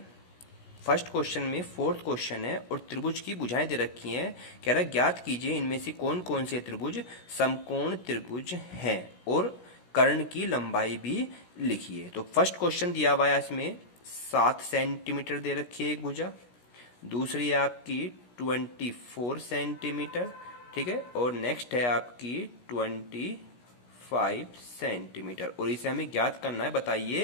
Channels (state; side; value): late; right; 16 ms